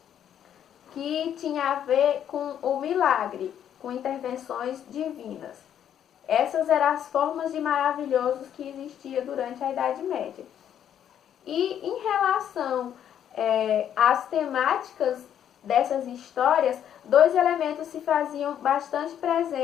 que tinha a ver com o milagre, com intervenções divinas. Essas eram as formas de maravilhosos que existia durante a Idade Média. E em relação às temáticas dessas histórias, dois elementos se faziam bastante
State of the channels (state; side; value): quieter; right; 9.7 dB